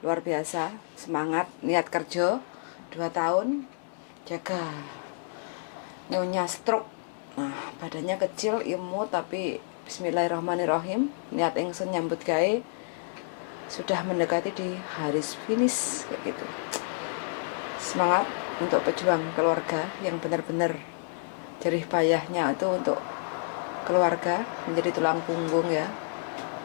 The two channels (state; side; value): silent; right; digital silence